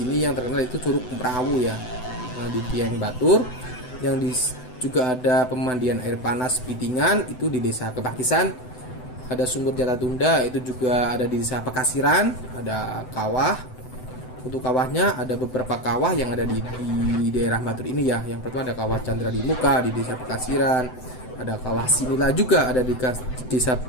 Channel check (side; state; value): right; late; 7.9 ms